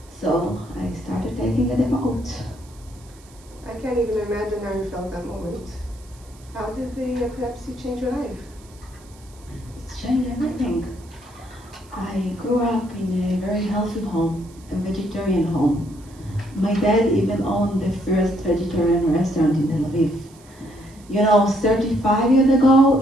So I started taking a devote. I can't even imagine how you felt that moment. How did the epilepsy change your life? It's changed everything. I grew up in a very healthy home, a vegetarian home. My dad even owned the first vegetarian restaurant in Tel Aviv. You know, 35 years ago,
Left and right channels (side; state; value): right; noise; hiss, 26 dB below the sound